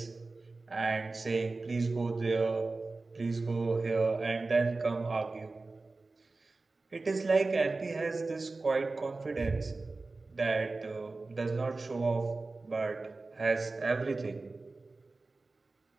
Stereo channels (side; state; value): left; quieter; 3.5 dB